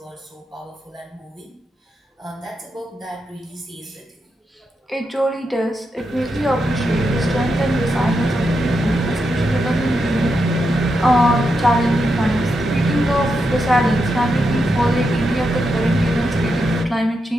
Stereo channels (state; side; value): normal; both; correlation 0.85